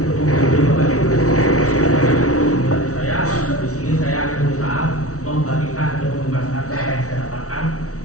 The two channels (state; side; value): late; right; 0.65 ms